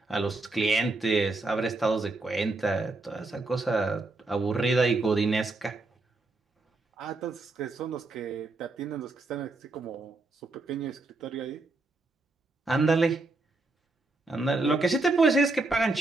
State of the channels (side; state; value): left; quieter; 3.3 dB